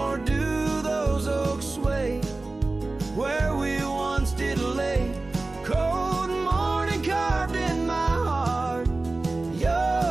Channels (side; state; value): left; quieter; 3.3 dB